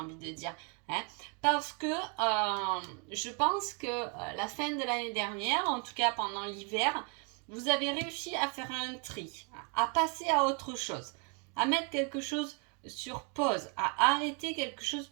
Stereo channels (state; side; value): quieter; left; 36.3 dB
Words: de dire. Parce que je pense que la fin de l'année dernière, en tout cas pendant l'hiver, vous avez réussi à faire un tri, à passer à autre chose, à mettre quelque chose sur pause, à arrêter quelque chose